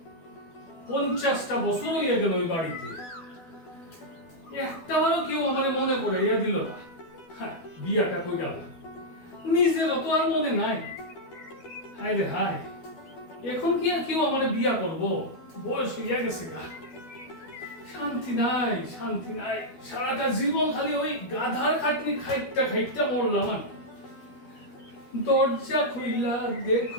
50টা বছর হয়ে গেল ওই বাড়িতে, একটাবারও কেউ আমার মনে পড়াইয়া দিল না। বিয়াটা কই গেল, নিজেরও তো আর মনে নাই। হায় রে হায়, এখন কি আর কেউ আমার বিয়া করবো? বয়স হইয়া গেছে গা, শান্তি নাই, শান্তি নাই। সারাটা জীবন খালি ওই গাধার খাটনি খাইটা খাইটা মরলাম আমি। দরজা খুইলা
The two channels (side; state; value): right; late; 12 ms